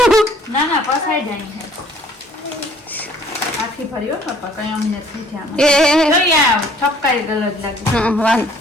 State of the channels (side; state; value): both; normal; correlation 0.58